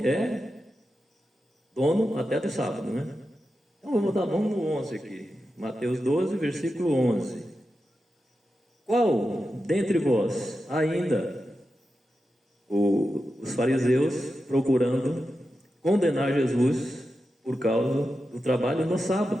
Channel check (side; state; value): both; normal; correlation 0.90